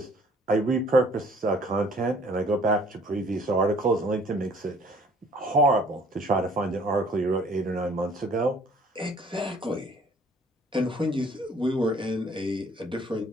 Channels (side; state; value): both; normal; correlation 0.56